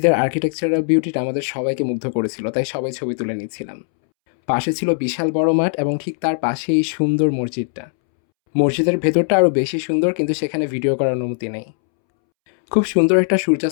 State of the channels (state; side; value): silent; right; 66 dB below the other